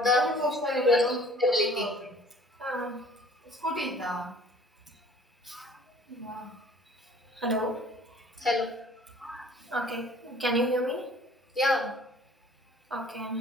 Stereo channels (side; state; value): both; normal; correlation 0.52